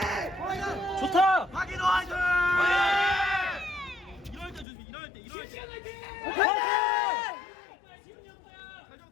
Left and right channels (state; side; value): drops out; right; at 4.7 s